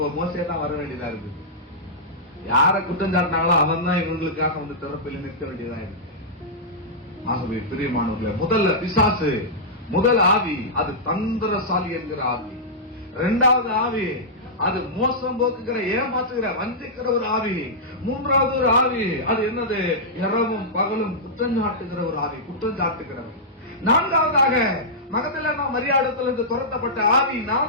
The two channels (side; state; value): both; normal; correlation -0.13